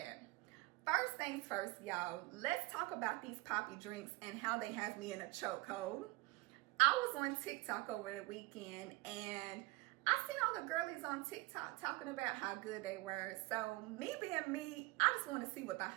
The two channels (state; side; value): quieter; left; 22.1 dB